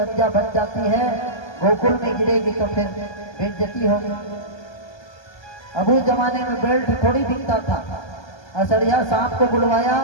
बन जाती है, गोकुल में गिरेगी तो फिर बेइज्जती होगी। अब उस जमाने में बेल्ट थोड़ी दिखता था। असड़िया सांप को बुलवाया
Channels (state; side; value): late; right; 1.2 ms